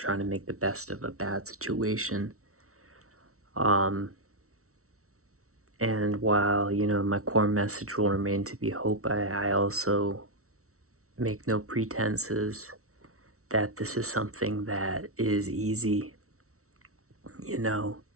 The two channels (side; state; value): left; late; 0.63 ms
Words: to make the best of a bad situation. And while, my core message will remain to be hope, I also make no pretenses that this is something that is easy,